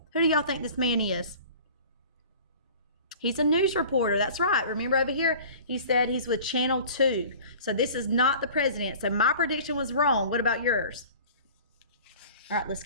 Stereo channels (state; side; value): inverted; both; correlation -0.43